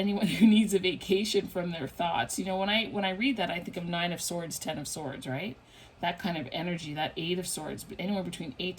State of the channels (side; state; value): both; identical; correlation 1.00